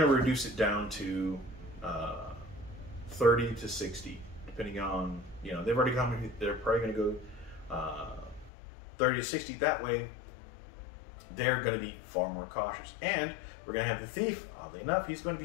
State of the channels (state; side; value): drops out; right; at 8.5 s